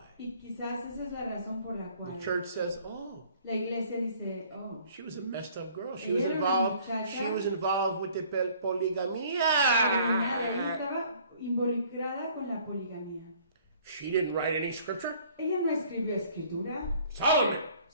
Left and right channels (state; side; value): inverted; both; correlation -0.56